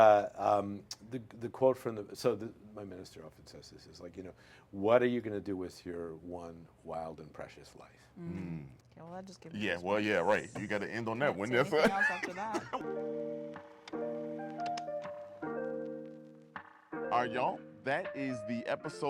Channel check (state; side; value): identical; both; correlation 1.00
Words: quote from my minister often says this is like, what are you going to do with your one wild and precious life? Okay, well, that just gives me Yeah, goosebumps. well, yeah, right. You got to end on that one. Can't That's say anything else after that. All right, y'all. That is the